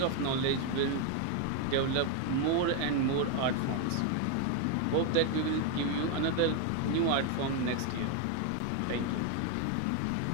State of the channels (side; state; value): both; different; correlation 0.01